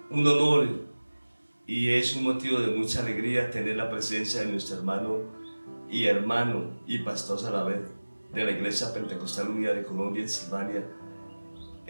un honor y es un motivo de mucha alegría tener la presencia de nuestro hermano y pastor a la vez de la Iglesia Pentecostal Unida de Colombia en Silvania,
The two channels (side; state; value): both; inverted; correlation -1.00